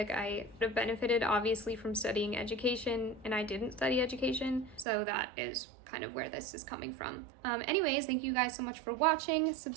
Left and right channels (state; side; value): drops out; left; at 4.9 s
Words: I would have benefited obviously from studying education, and I didn't study education, so that is kind of where this is coming from. Anyways, thank you guys so much for watching.